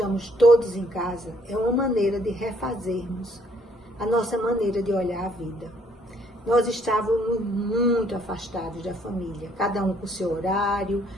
todos em casa, é uma maneira de refazermos a nossa maneira de olhar a vida. Nós estávamos muito afastados da família, cada um com o seu horário,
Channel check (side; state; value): both; normal; correlation 0.65